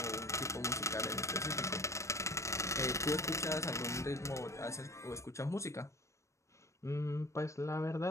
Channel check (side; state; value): right; late; 0.15 ms